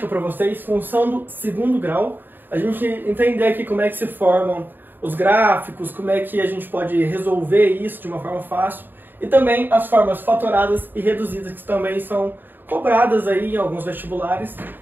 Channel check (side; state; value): left; late; 0.093 ms